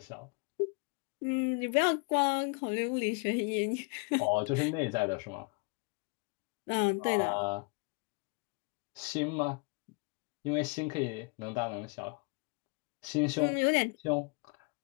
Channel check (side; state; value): right; quieter; 32.2 dB